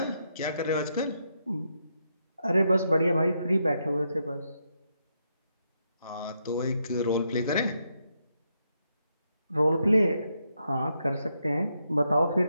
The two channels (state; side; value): inverted; both; correlation -0.80